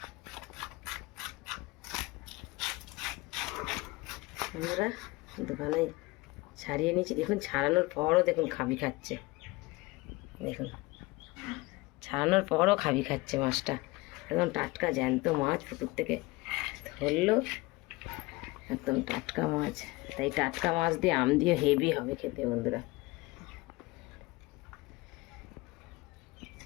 বন্ধুরা, দোকানে ছাড়িয়ে নিয়েছি। দেখুন ছাড়ানোর পরও দেখুন খাবি খাচ্ছে। দেখুন ছাড়ানোর পরও খাবি খাচ্ছে মাছটা, একদম টাটকা জ্যান্ত মাছ, পুকুর থেকে ধরলো, একদম টাটকা মাছ। তাই টাটকা মাছ দিয়ে আম দিয়ে হেভি হবে খেতে বন্ধুরা।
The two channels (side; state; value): right; quieter; 22.5 dB